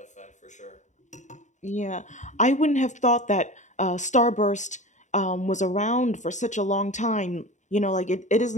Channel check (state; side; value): late; right; 0.35 ms